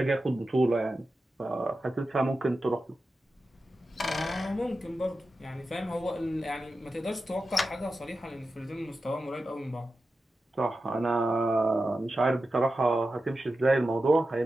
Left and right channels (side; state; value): both; normal; correlation 0.92